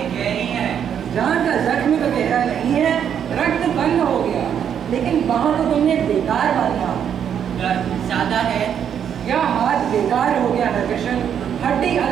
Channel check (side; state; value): left; quieter; 8.6 dB